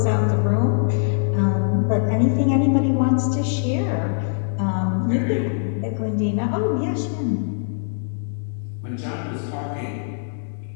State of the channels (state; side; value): silent; right; digital silence